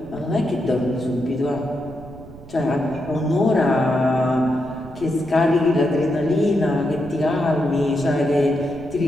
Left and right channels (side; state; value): right; noise; rumble, 18 dB below the sound